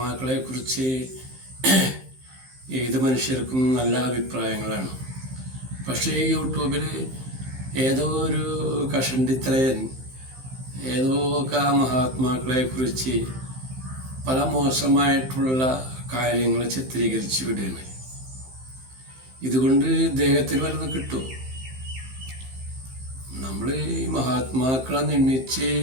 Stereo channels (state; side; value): late; left; 15 ms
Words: കുറിച്ച് ഏത് മനുഷ്യർക്കും നല്ല അഭിപ്രായങ്ങളാണ്. പക്ഷേ ഈ യൂട്യൂബിൽ ഏതോ ഒരു കഷണ്ടിത്തലയൻ ഏതോ ഒക്കെ മഹാത്മാക്കളെ കുറിച്ച് പല മോശമായിട്ടുള്ള കാര്യങ്ങൾ ചിത്രീകരിച്ച് വിടുകയാണ്. ഇതുകൊണ്ട് ഇദ്ദേഹത്തിന് വല്ലതും കിട്ടും? നമ്മൾ ഈ മഹാത്മാക്കളെ നിന്ദിച്ച്